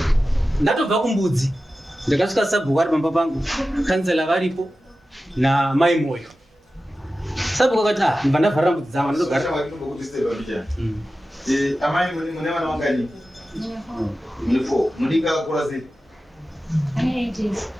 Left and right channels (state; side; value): normal; both; correlation 0.94